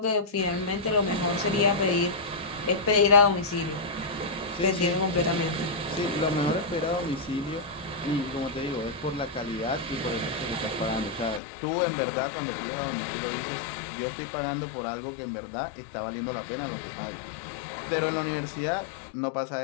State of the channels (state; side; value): drops out; right; at 11.4 s